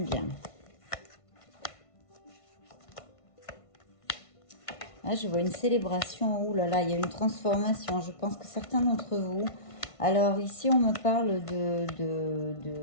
Là, je vois une célébration. Ouh là là, il y a une transformation. Je pense que certains d'entre vous... Alors, ici, on me parle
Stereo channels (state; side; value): late; right; 1.5 ms